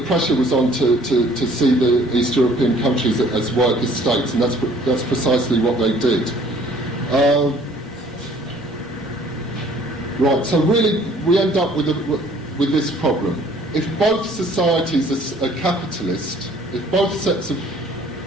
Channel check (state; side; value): normal; both; correlation 0.56